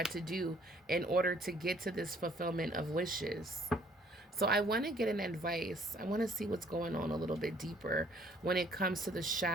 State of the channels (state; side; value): normal; both; correlation 0.60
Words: to do in order to get to this fulfillment of wishes. So I want to get an advice. I want to see what's going on a little bit deeper when it comes to the